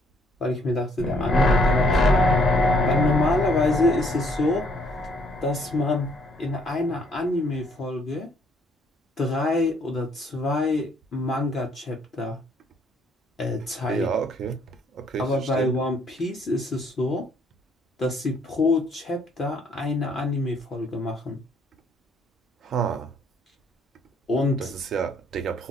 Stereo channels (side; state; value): both; normal; correlation 0.66